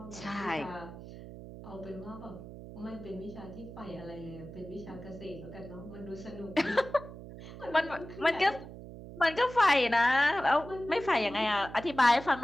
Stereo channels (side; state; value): right; noise; hum, 13 dB below the sound